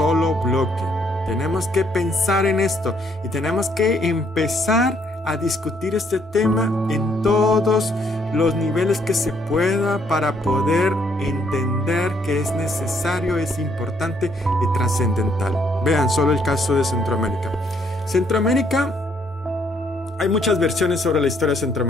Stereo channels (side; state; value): both; normal; correlation 0.69